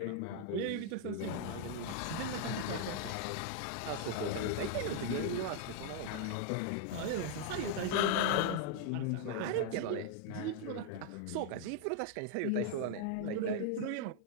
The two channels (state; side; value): different; both; correlation 0.00